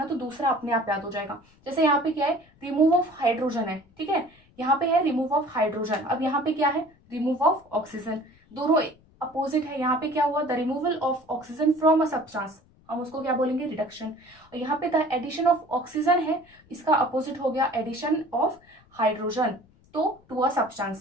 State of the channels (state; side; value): noise; left; rumble, 30 dB below the sound